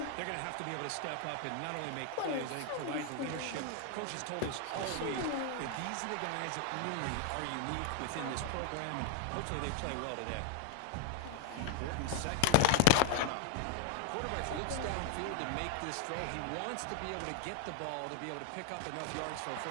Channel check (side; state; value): both; different; correlation 0.01